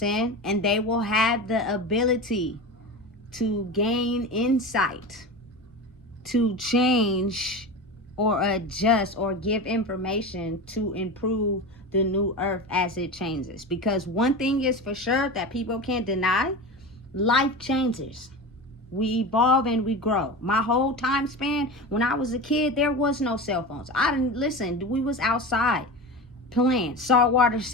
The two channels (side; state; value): both; normal; correlation 0.27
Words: And they will have the ability to gain insight, to change or adjust or give information to improve the new earth as it changes. Because one thing is for sure that people can't deny, life changes. We evolve and we grow. My whole time span, when I was a kid, there was no cell phones. I didn't listen. We was outside playing saltwater